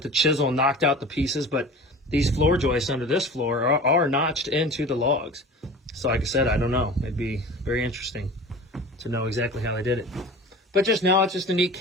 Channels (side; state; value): both; normal; correlation 0.38